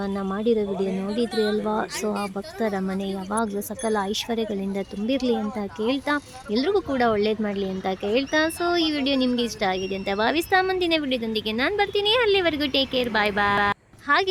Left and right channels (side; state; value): both; identical; correlation 1.00